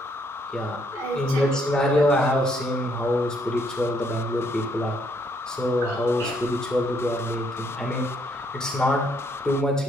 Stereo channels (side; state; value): both; normal; correlation 0.70